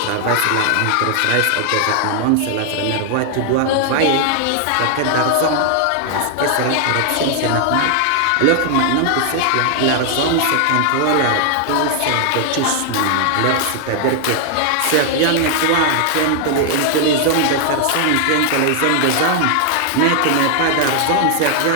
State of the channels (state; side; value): different; both; correlation 0.00